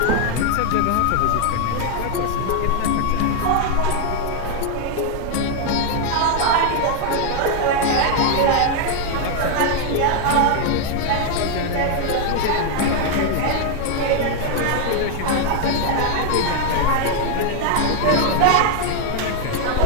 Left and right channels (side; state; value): both; different; correlation 0.01